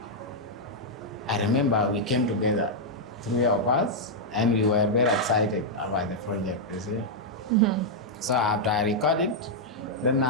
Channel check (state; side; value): normal; both; correlation -0.04